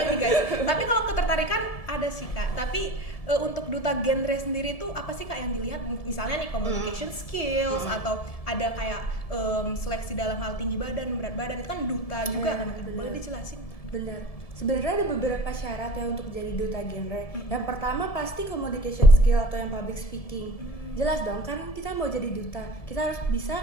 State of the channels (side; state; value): right; late; 1.7 ms